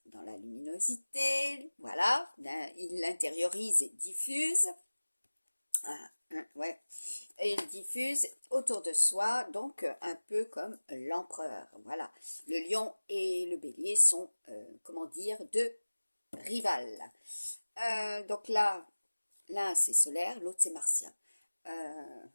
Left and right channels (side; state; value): both; inverted; correlation -1.00